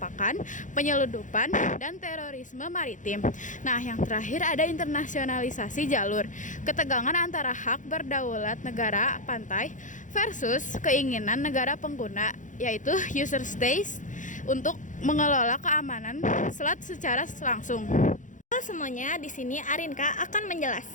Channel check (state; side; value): late; right; 0.37 ms